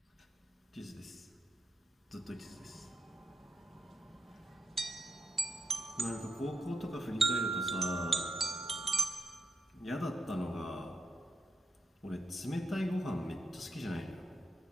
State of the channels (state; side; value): normal; both; correlation 0.84